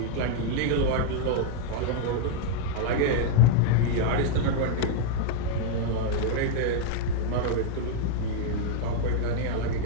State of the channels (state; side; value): different; both; correlation -0.01